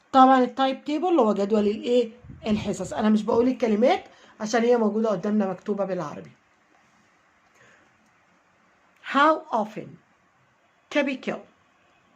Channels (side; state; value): both; identical; correlation 1.00